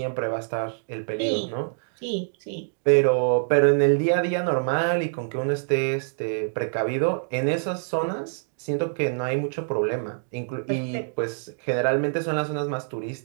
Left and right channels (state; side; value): silent; left; digital silence